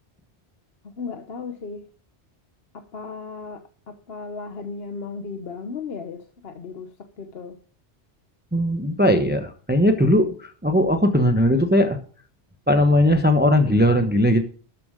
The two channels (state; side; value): normal; both; correlation 0.53